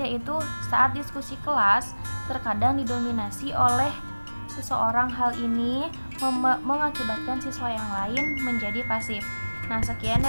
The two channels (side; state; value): both; inverted; correlation -1.00